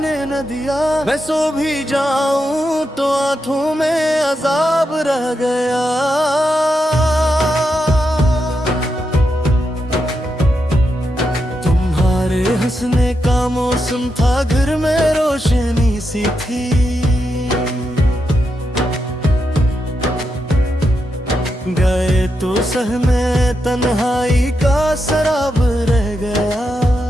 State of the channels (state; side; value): normal; both; correlation 0.85